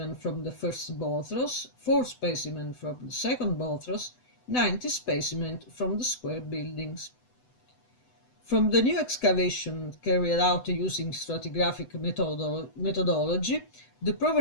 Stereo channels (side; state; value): right; late; 8.0 ms